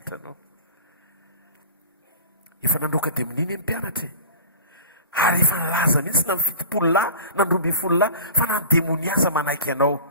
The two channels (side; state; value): both; inverted; correlation -0.39